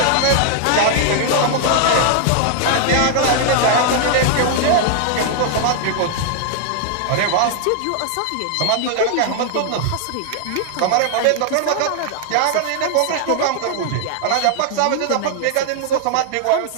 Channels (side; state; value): both; different; correlation 0.00